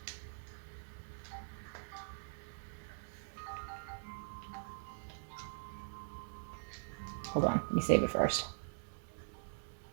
Hold on, let me save it first.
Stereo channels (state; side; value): silent; left; digital silence